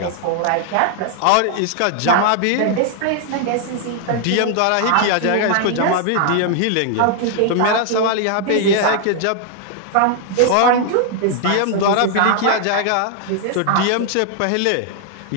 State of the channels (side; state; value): both; different; correlation 0.00